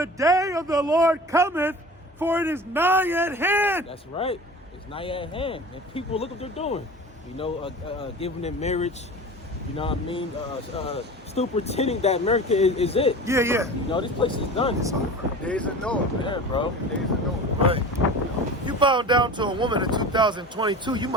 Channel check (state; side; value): normal; both; correlation 0.36